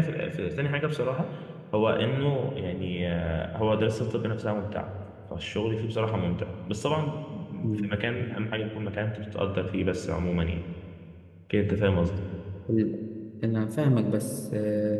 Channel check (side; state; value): both; identical; correlation 1.00